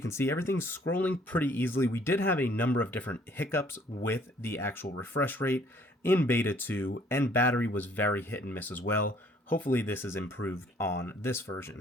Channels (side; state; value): both; normal; correlation 0.60